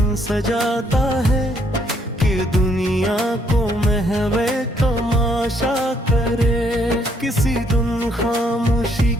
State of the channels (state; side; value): normal; both; correlation 0.70